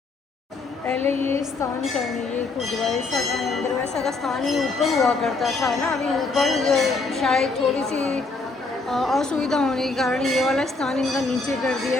पहले ये स्थान करने ये खुदवाइसा का मंदिर वैसा का स्थान ही ऊपर हुआ करता था ना। अभी ऊपर शायद थोड़ी सी असुविधा होने के कारण ये वाला स्थान इनका नीचे कर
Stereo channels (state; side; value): quieter; right; 3.7 dB